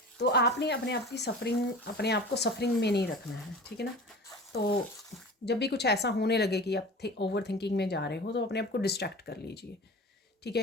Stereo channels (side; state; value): both; normal; correlation 0.37